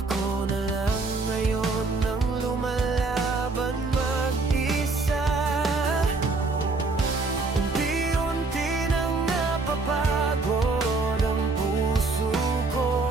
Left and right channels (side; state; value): left; quieter; 3.7 dB